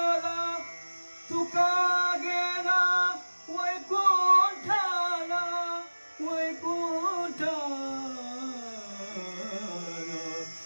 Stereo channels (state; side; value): inverted; both; correlation -1.00